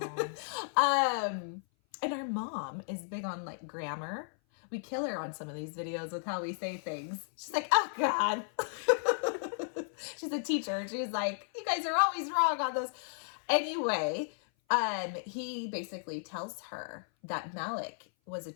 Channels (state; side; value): silent; right; 55 dB below the other